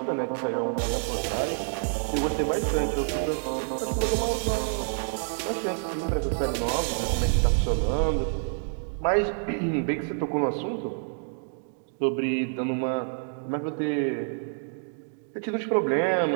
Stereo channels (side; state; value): left; silent; digital silence